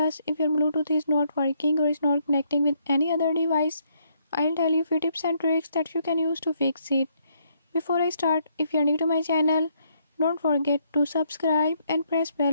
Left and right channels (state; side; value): inverted; both; correlation -0.71